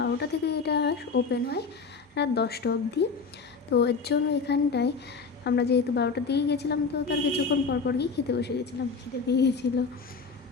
থেকে, এটা ওপেন হয় রাত 10টা অবধি। তো এর জন্য এখানটায় আমরা যেহেতু 12টার দিকে গেছিলাম, তো তার কিছুক্ষণ পর গিয়ে খেতে বসে গেছিলাম, খিদে পেয়ে গেছিলো।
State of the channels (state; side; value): quieter; right; 4.9 dB